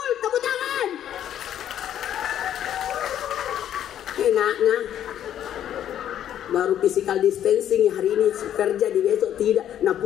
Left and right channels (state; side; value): quieter; right; 10.6 dB